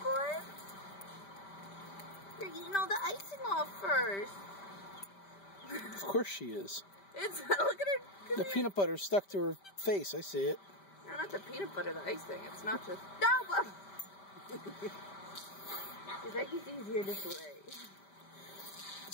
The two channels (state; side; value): late; right; 5.1 ms